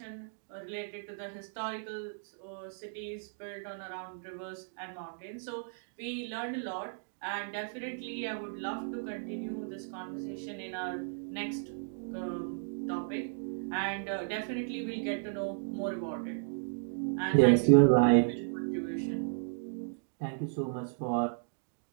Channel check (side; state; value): left; silent; digital silence